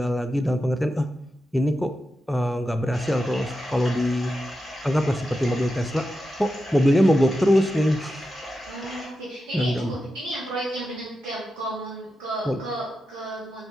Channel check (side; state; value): both; normal; correlation 0.90